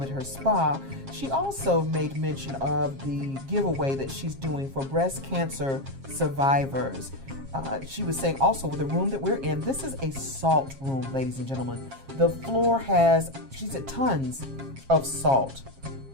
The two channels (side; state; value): left; late; 7.4 ms